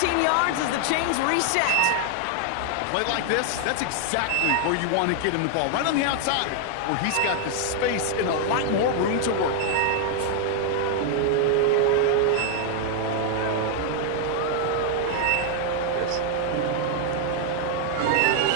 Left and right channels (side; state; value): both; different; correlation 0.00